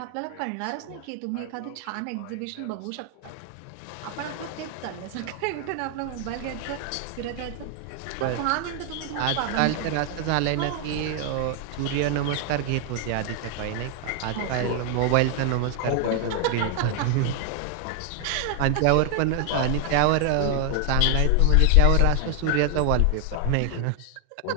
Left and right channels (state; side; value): different; both; correlation 0.00